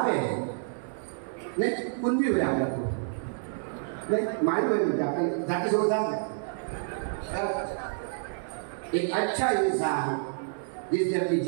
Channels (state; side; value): silent; left; digital silence